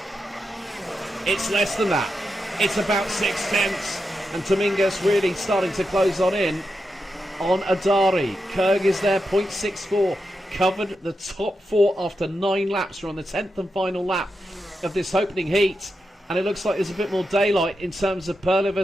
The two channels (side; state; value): both; normal; correlation 0.87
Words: It's less than that. It's about 6/10. And Dominguez really starting to close in on Adari. Kerg is there, 0.64. Covered the top 4 after 9 laps. We're on the 10th and final lap of this opening heat, and it looks like there's a bit more daylight in terms of Perla